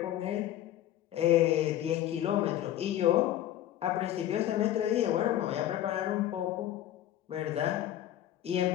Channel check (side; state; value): right; quieter; 12.6 dB